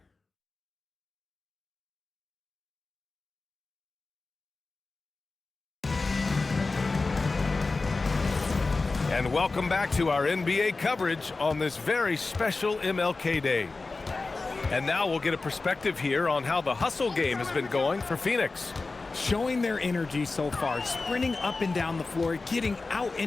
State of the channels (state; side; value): quieter; right; 3.7 dB